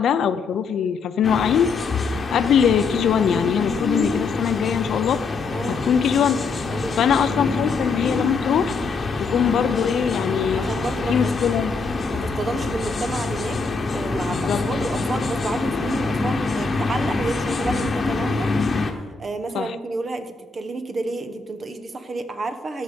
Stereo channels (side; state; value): right; quieter; 4.6 dB